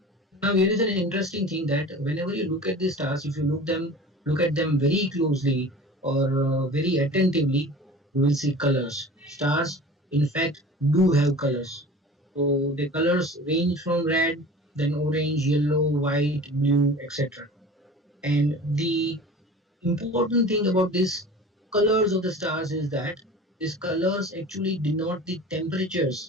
Now here is an interesting thing that whenever you look at the stars, if you look at them very closely or very attentively, you will see colors. Stars, in fact, do have colors. So the colors range from red then orange, yellow, white, blue, etc. And the important thing about these colors of the stars is that these colors actually denote the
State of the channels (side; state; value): both; normal; correlation 0.39